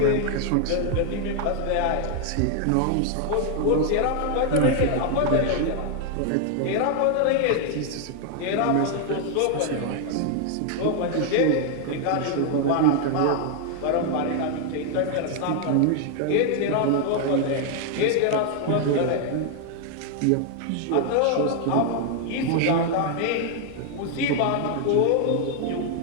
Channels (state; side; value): different; both; correlation 0.00